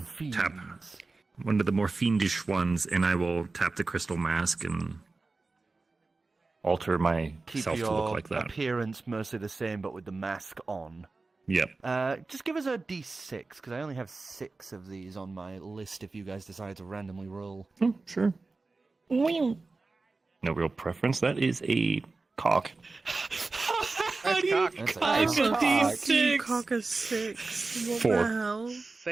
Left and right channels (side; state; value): left; quieter; 3.7 dB